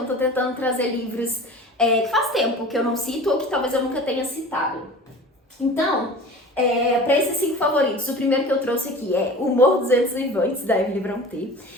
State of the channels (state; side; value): normal; both; correlation 0.39